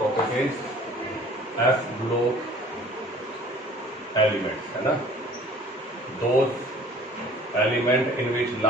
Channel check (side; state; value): both; normal; correlation 0.51